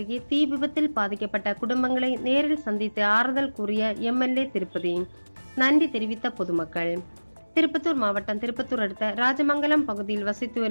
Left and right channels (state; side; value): inverted; both; correlation -1.00